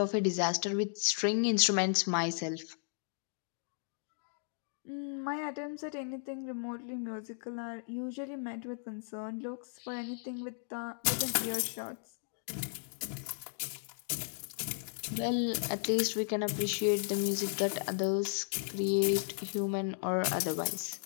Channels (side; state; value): right; silent; digital silence